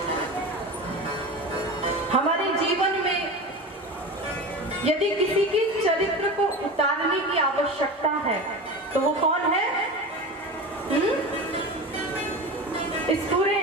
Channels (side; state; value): both; normal; correlation 0.29